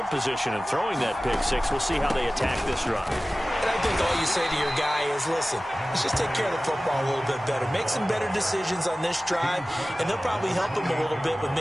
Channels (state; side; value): normal; both; correlation 0.97